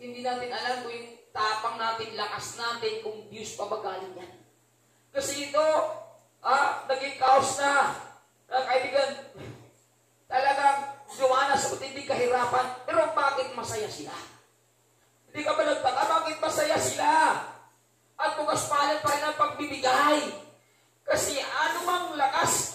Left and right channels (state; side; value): identical; both; correlation 1.00